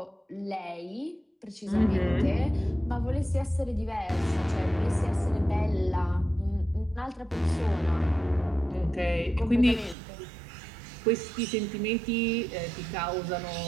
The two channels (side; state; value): left; drops out; at 10.0 s